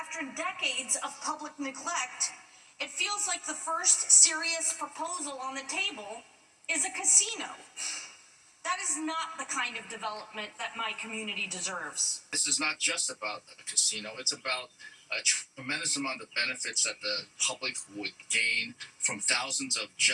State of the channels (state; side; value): identical; both; correlation 1.00